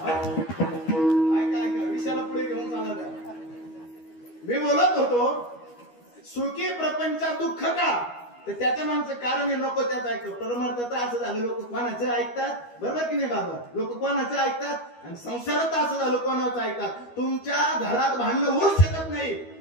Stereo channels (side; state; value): right; late; 12 ms